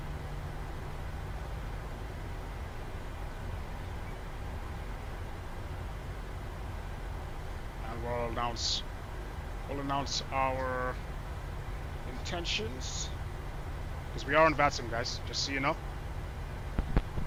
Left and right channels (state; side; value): identical; both; correlation 1.00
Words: And we'll announce our intentions. Because we are in Vatsim, guys, just so you know.